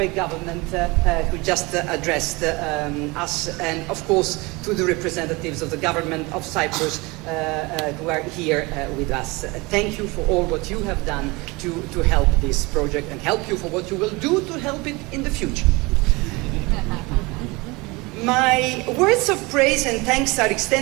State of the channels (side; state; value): left; quieter; 24.7 dB